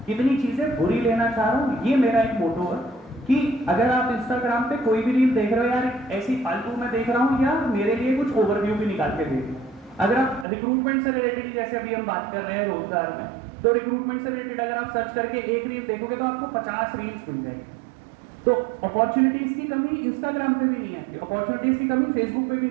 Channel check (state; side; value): drops out; left; at 10.5 s